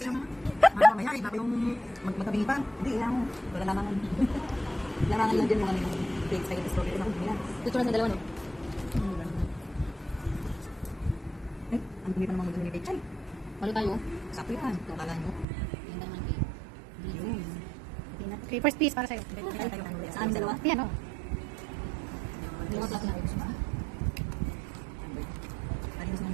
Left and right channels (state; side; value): drops out; left; at 15.5 s